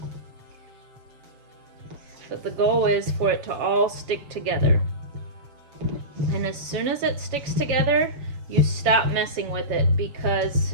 But the goal is for it to all stick together. And as soon as it sticks together, you stop messing with it,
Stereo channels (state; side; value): late; left; 7.3 ms